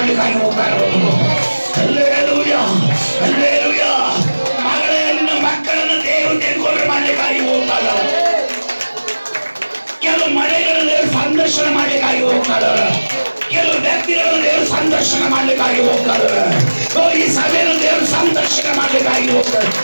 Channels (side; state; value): both; inverted; correlation -1.00